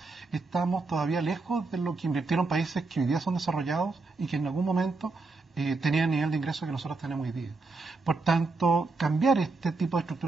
estamos todavía lejos de lo que invirtieron países que hoy día son desarrollados y que en algún momento tenían el nivel de ingreso que nosotros tenemos hoy día. Por tanto, cambiar este tipo de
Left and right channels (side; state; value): left; quieter; 3.7 dB